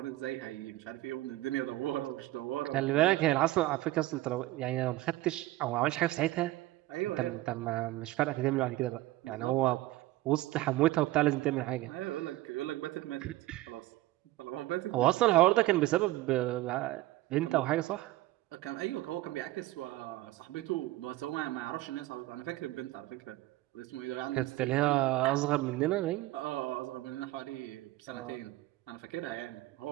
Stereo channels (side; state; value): left; quieter; 17.1 dB